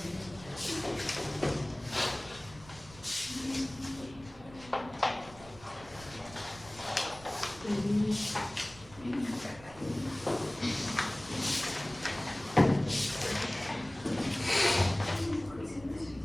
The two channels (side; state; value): right; noise; rumble, 20 dB below the sound